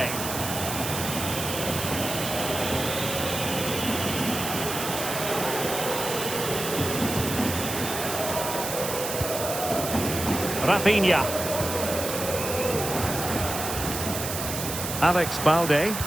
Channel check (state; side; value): noise; right; hiss, 5 dB below the sound